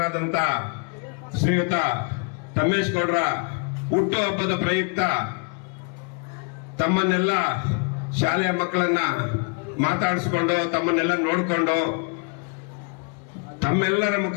ಶ್ರೀಯುತ ತಮ್ಮೇಶ್ ಗೌಡ್ರ ಹುಟ್ಟು ಹಬ್ಬದ ಪ್ರಯುಕ್ತ ತಮ್ಮನ್ನೆಲ್ಲ ಶಾಲೆಯ ಮಕ್ಕಳನ್ನ ಮಾತಾಡಿಸಿಕೊಂಡು ತಮ್ಮನ್ನೆಲ್ಲ ನೋಡಿಕೊಂಡು ತಮ್ಮೆಲ್ಲರ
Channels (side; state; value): right; quieter; 35.1 dB